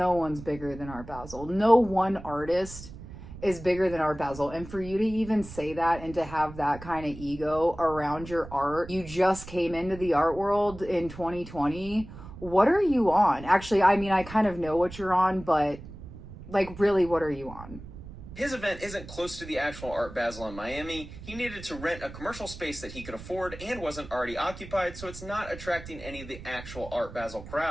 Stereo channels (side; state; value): right; noise; rumble, 14 dB below the sound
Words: one's bigger than Art Basel. No one artist is bigger than Art Basel. And for you to even say that and to have that kind of ego around your art, you just came into the art world in 2020. What are you on? Actually, I mean, I kind of know what you're on, but like, really, what are you on? His event isn't close to the actual Art Basel in Miami. He needed to rent a commercial space that he could afford and wasn't already occupied, so it's not attracting any of the actual Art Basel